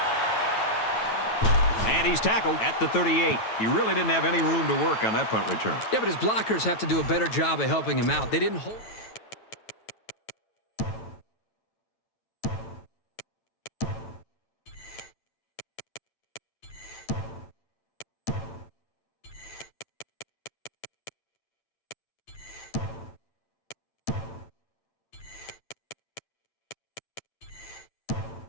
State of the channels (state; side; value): late; right; 9.2 ms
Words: And he's tackled at the 38. He really didn't have any room to work on that punt return. Yeah, but his blockers have to do a better job of helping him out. They didn't hold...